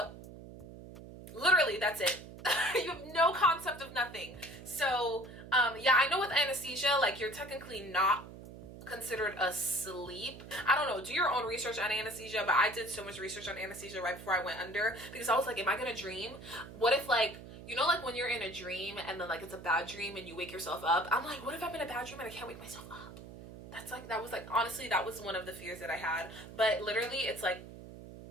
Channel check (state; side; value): noise; right; hum, 15 dB below the sound